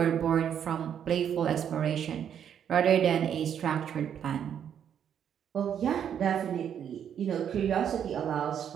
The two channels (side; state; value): left; quieter; 8.8 dB